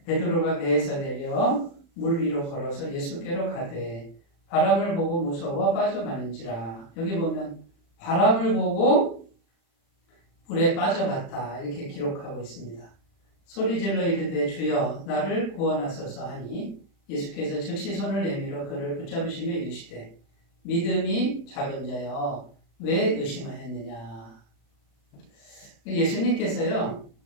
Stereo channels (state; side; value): late; right; 35 ms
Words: 베드로가 배에서 내려 물 위로 걸어서 예수께로 가되 바람을 보고 무서워 빠져가는지라. 여기 보면 바람을 보고 물에 빠져갔다 이렇게 기록하고 있습니다. 소리질러 이르되 주여 나를 구원하소서 하니 예수께서 즉시 손을 내밀어 그를 붙잡으시며 이르시되 믿음이 작은 자여 왜 의심하였느냐. 예수님께서요